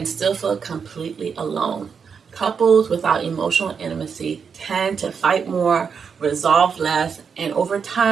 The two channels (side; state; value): left; quieter; 6.3 dB